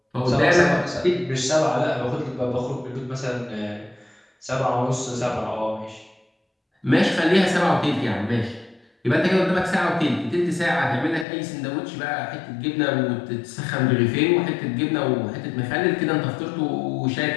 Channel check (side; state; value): right; drops out; at 11.2 s